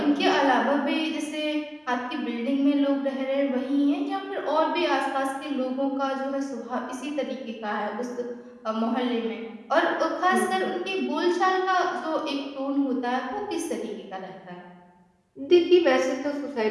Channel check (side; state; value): both; identical; correlation 1.00